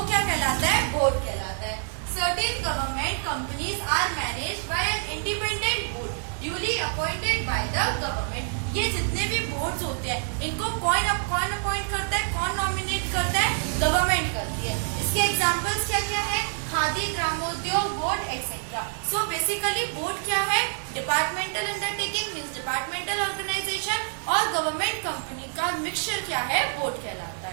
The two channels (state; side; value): silent; left; 60 dB below the other